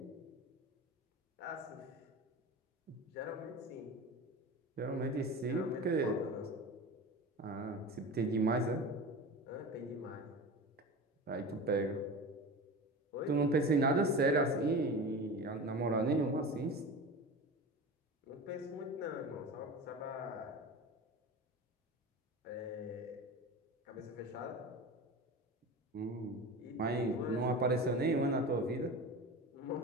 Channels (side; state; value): both; normal; correlation 0.31